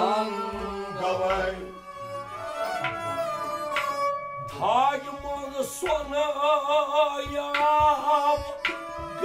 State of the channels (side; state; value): both; identical; correlation 1.00